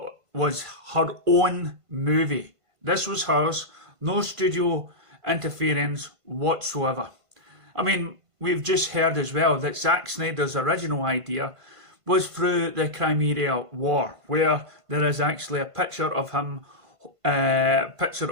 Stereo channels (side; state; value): left; late; 1.5 ms